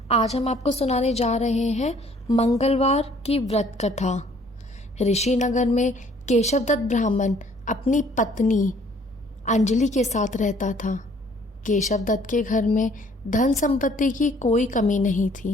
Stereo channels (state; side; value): normal; both; correlation 0.59